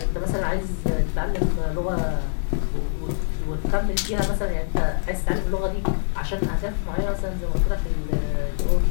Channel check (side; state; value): right; silent; digital silence